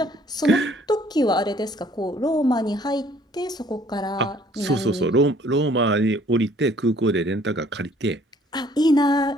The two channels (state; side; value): normal; both; correlation 0.59